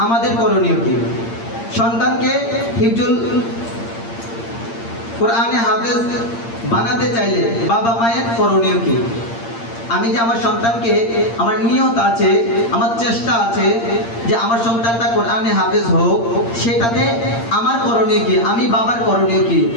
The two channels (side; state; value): right; late; 8.7 ms